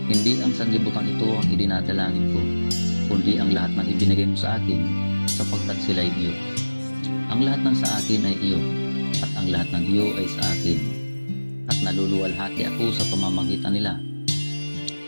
Hindi ang sanlibutan ito ang idinadalangin ko, kundi ang lahat ng ibinigay mo sa akin, sapagkat sila'y iyo. Ang lahat ng sa akin ay iyo, at ang lahat ng iyo ay sa akin, at naluluwalhati ako sa pamamagitan nila.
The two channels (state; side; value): inverted; both; correlation -1.00